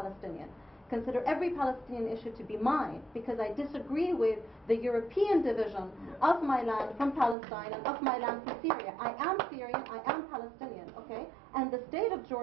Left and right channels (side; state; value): left; drops out; at 7.4 s